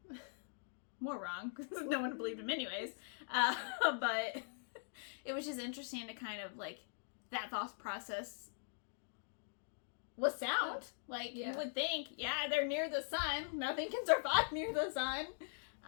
More wrong, because no one believed him anyways. But it was just interesting to kind of, like, that thought process was sound. Like, you would think, yeah, they're near the sun. Nothing can survive near the sun.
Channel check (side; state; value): right; silent; digital silence